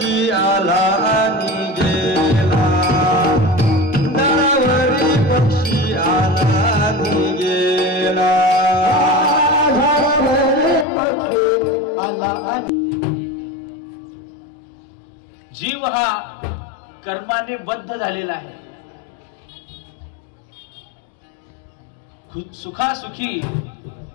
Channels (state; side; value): drops out; right; at 10.9 s